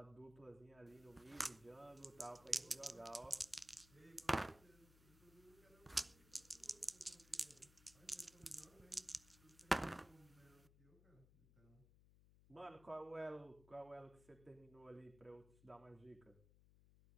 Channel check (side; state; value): left; noise; hum, 22 dB below the sound